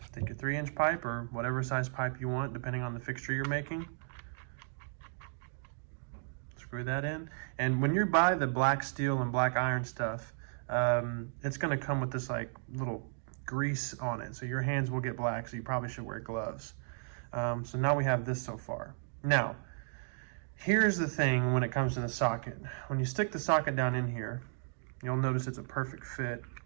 Take your 3 inch pipe or whatever size pipe you want, depending on the fixture you're making. Screw that in. And when you buy the black steel and black iron stuff, it's gonna come with this like little grease on it. So your hands will get black, so you probably should wear gloves. So now we have this so far. Now, here's the thing when it comes to the socket. When you stick the socket down in here, you'll notice it's a perfect fit.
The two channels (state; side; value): silent; left; digital silence